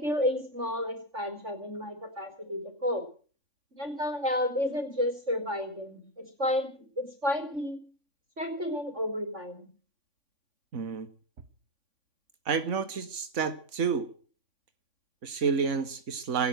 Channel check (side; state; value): left; late; 3.5 ms